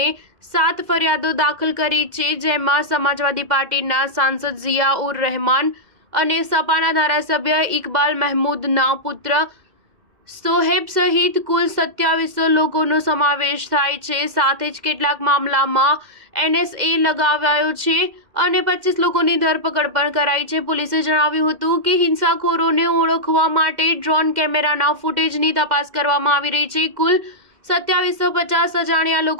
7 ફરિયાદો દાખલ કરી છે, જેમાં સમાજવાદી પાર્ટીના સાંસદ ઝિયા ઉર રહેમાન અને સપાના ધારાસભ્ય ઇકબાલ મહેમૂદના પુત્ર સોહેબ સહિત કુલ 27 લોકોનો સમાવેશ થાય છે. સાથે જ કેટલાક મામલામાં NSA લગાવાયો છે અને 25 લોકોની ધરપકડ પણ કરાઈ છે. પોલીસે જણાવ્યું હતું કે હિંસાખોરોને ઓળખવા માટે ડ્રોન કેમેરાના ફૂટેજની તપાસ કરવામાં આવી રહી છે. કુલ 2750 અજાણ્યા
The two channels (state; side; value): late; left; 2.0 ms